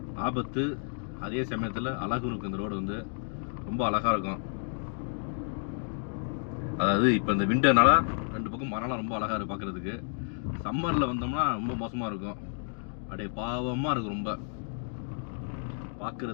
ஆபத்து, அதே சமயத்தில் அழகும் இருக்கும். இந்த ரோடு வந்து ரொம்ப அழகாக இருக்கும். அதாவது இப்போ இந்த விண்டர்னால ரெண்டு பக்கம் மரம்லாம் ரொம்ப அழகாக இருக்குது பார்க்குறதுக்கு. சம்மரில் வந்தோம்னா ரொம்ப மோசமாக இருக்கும். அப்படியே பாவமாக இருக்கும், ரொம்ப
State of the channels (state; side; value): silent; right; 57 dB below the other